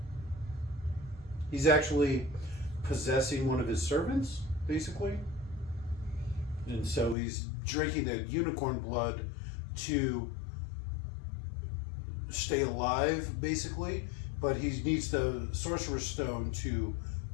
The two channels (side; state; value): right; drops out; at 7.2 s